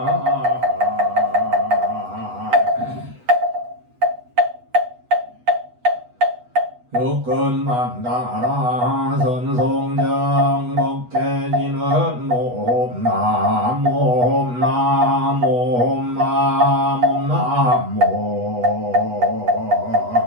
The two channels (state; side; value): late; left; 8.2 ms